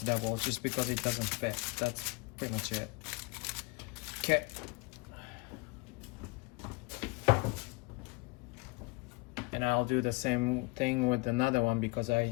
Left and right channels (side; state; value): right; quieter; 26.3 dB